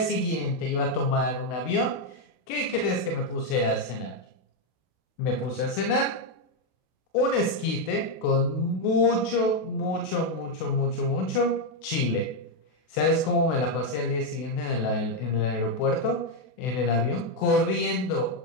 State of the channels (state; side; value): late; right; 32 ms